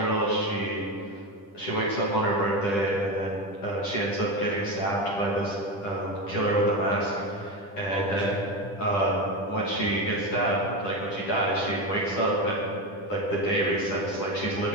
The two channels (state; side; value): late; right; 10 ms